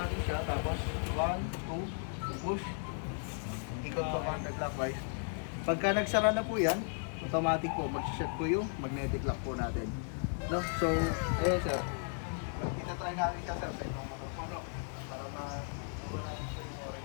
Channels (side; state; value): right; silent; 54 dB below the other